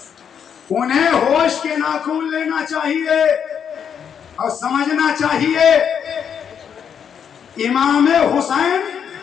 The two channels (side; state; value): right; quieter; 7.8 dB